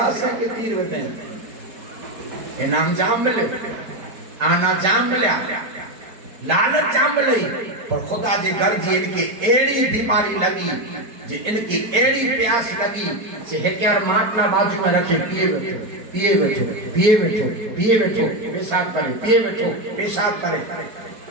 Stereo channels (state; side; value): late; left; 4.6 ms